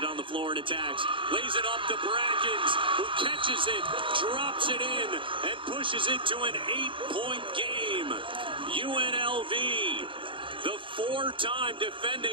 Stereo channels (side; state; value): left; late; 0.25 ms